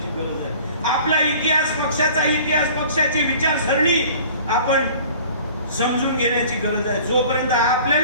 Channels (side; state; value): both; inverted; correlation -0.47